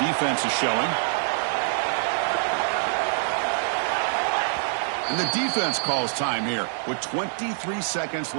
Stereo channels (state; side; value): silent; left; digital silence